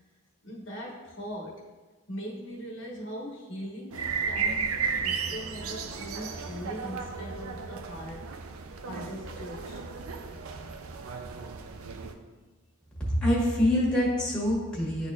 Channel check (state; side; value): normal; both; correlation 0.44